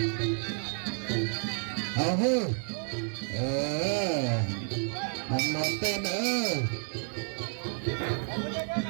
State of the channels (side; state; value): left; silent; 57 dB below the other